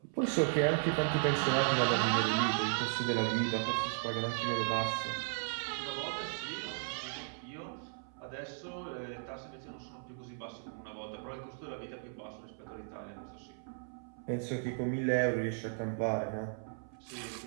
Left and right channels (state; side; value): silent; left; 54 dB below the other